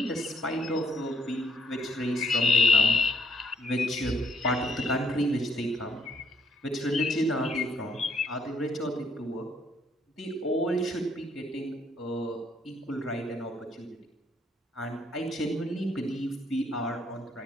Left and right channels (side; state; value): both; normal; correlation 0.67